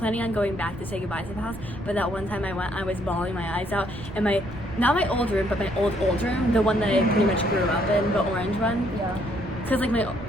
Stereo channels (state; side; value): noise; right; rumble, 15 dB below the sound